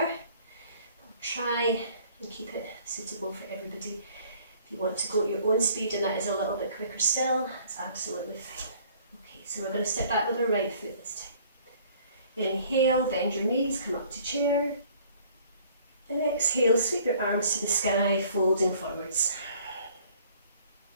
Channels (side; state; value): both; inverted; correlation -0.56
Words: try and keep it suitable for everybody. If you want to go at your own speed and that is a little bit quicker still, that's absolutely fine. Okay, so we're going to step back with our right foot this time. Inhale, bend your knees, come up to chair. And exhale, sweep your arms to the sky, folding forwards.